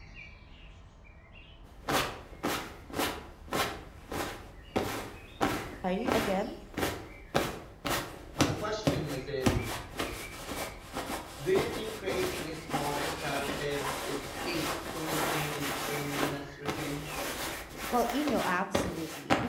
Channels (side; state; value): both; identical; correlation 1.00